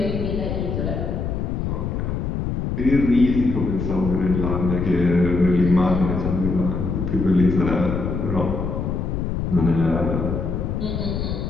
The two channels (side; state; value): left; noise; rumble, 2 dB below the sound